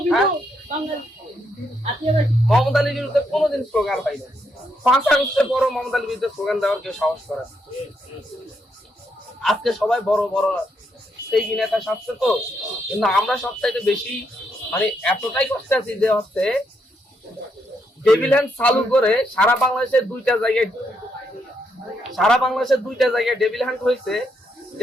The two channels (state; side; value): normal; both; correlation 0.78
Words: মোহাম্মদ আলীর বিরুদ্ধে কোনোদিন স্লোগান হয়নি। 5 আগস্টের পরও মোহাম্মদ আলীর বিরুদ্ধে স্লোগান দেওয়ার কেউ সাহস করে। আজকে সবাই বড় বড় সেই নেতা সাজছে তো, কিন্তু আমরা সবচাইতে বেশি মানে এতটাই কষ্টে আছি যে হচ্ছে ডেভিল হ্যান্ড চালু করে সারা বাংলাদেশের 2টা জায়গায় ডেভিল হ্যান্ড হয়েছে,